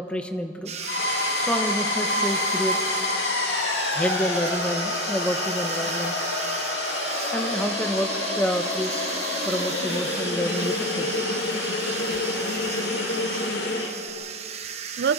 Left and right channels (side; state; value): both; normal; correlation 0.18